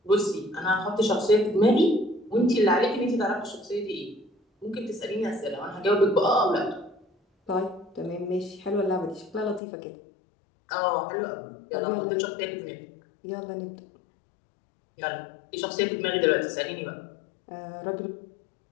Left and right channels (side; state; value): right; drops out; at 9.6 s